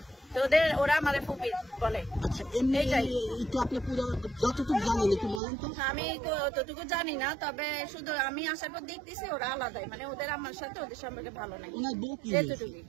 তো ওরা আমার ফুপি বলে। আচ্ছা এমনি একটু আপনি পুরো যতটুকু জানেন একটু বলেন তো। আমি ততটুকু জানি না, তবে শুধু আমি আসার পর দেখতেছি ওরা আলাদাই, মানে ওদের আমার সাথে ওদের সম্পর্কে ভালো নাই ওনার বউ কি এতটুকুই।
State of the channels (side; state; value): left; drops out; at 5.4 s